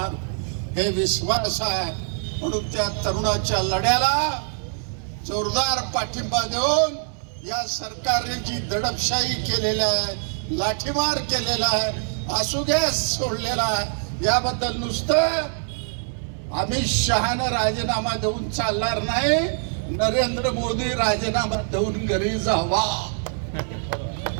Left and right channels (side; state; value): left; silent; 62 dB below the other